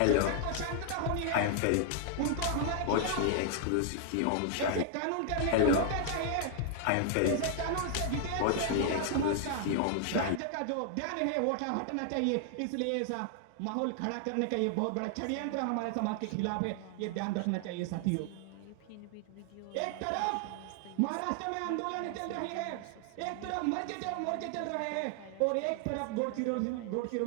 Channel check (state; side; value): different; both; correlation 0.00